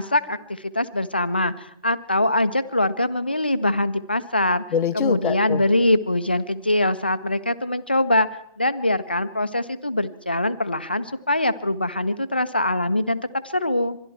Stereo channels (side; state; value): both; inverted; correlation -0.74